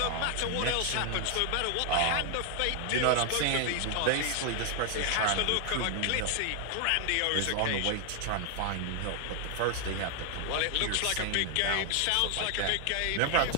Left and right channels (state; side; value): different; both; correlation 0.00